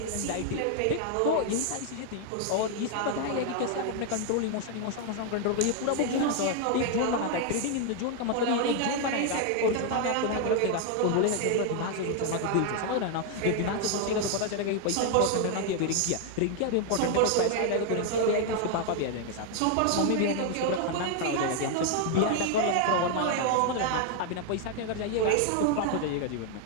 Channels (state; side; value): different; both; correlation 0.00